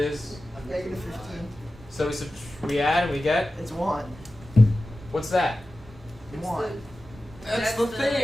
Negative 15. So we add and we get. It's 1. What's that? 1. That's the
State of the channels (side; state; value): both; normal; correlation 0.95